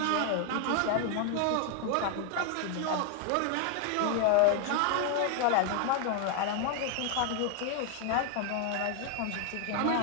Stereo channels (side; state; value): both; different; correlation 0.00